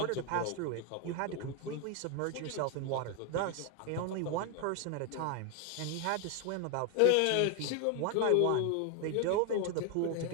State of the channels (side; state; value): both; different; correlation 0.01